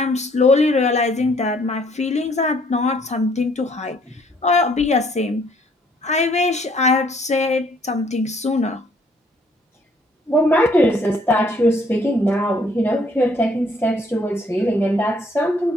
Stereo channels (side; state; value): both; normal; correlation 0.64